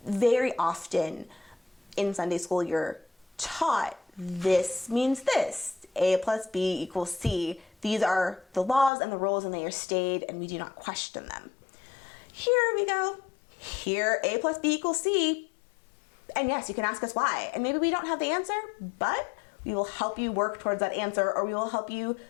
Very often in Sunday school, you're taught this means this, A plus B equals C. These are the laws and the rules, and they are stated, and we do not question them. Here we go. Here, A plus B equals C. And yes, you can ask us why. And maybe we don't have the answer, but we will help you work towards that answer, or we will help you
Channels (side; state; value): right; drops out; at 8.9 s